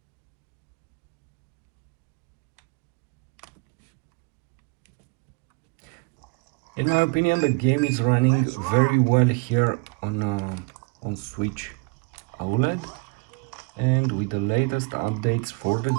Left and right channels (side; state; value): left; quieter; 31.0 dB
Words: In my opinion, the game is running very well here on Switch OLED, and with the latest updates for the